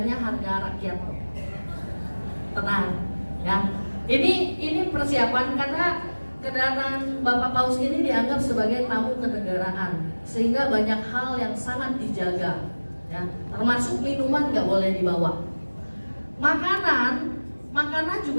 harga rakyat. Tenang, ya. Ini persiapan karena kedatangan Bapak Paus ini dianggap sebagai tamu kenegaraan, sehingga banyak hal yang sangat dijaga, ya. Termasuk minuman nggak boleh dibawa. Makanan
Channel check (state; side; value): inverted; both; correlation -1.00